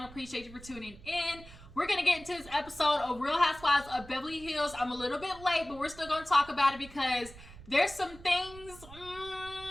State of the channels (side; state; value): right; noise; rumble, 18 dB below the sound